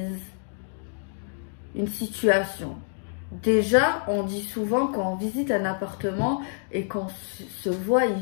une situation. Déjà, on dit souvent quand on visite un appartement et qu'on se voit y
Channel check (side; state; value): right; silent; digital silence